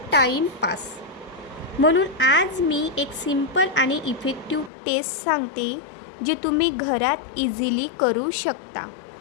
टाईमपास. म्हणून आज मी एक सिंपल आणि इफेक्टिव्ह टेस्ट सांगते जे तुम्ही घरात इझिली करू शकता.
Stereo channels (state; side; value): drops out; right; at 4.7 s